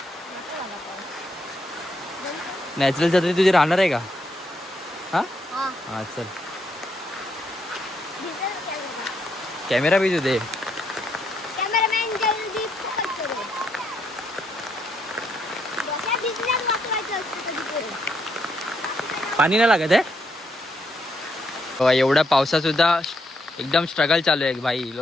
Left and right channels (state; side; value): normal; both; correlation 0.76